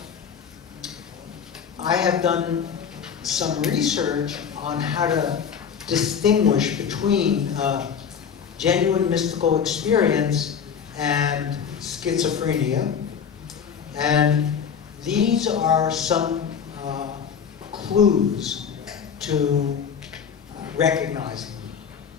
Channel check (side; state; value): right; quieter; 7.2 dB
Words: I have done some research on how to distinguish between genuine mystical experience and schizophrenia, and these are some clues to recognizing